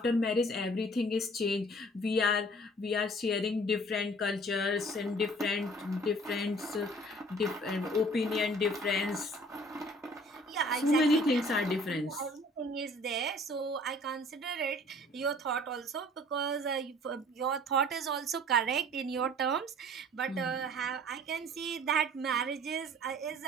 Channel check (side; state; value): both; normal; correlation 0.52